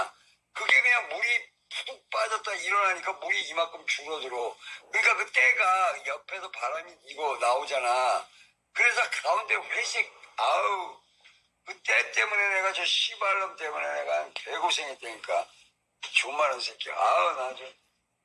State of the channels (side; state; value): both; identical; correlation 1.00